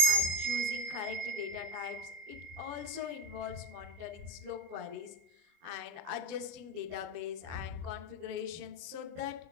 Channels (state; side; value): late; left; 24 ms